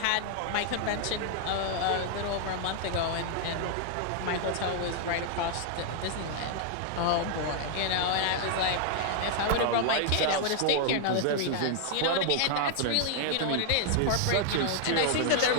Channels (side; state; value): both; different; correlation 0.00